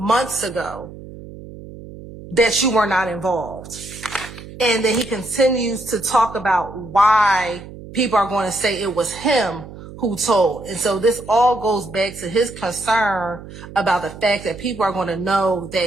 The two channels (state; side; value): noise; right; hum, 15 dB below the sound